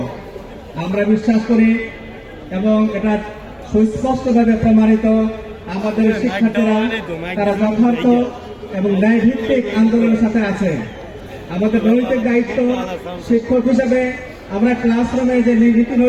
আমরা বিশ্বাস করি এবং এটা সুস্পষ্টভাবে প্রমাণিত, আমাদের শিক্ষার্থীরা তারা যথার্থ এবং ন্যায়ভিত্তিক আন্দোলনের সাথে আছে। আমাদের নৈতিক দায়িত্ব শিক্ষক হিসেবে আমরা ক্লাসরুমে যে নীতি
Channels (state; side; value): identical; both; correlation 1.00